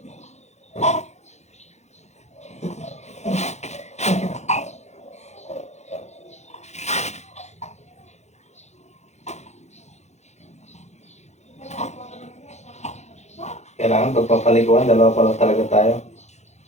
Kailangan pagpapaliguan, dalawa pa lang talaga tayo.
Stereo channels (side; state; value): right; late; 0.33 ms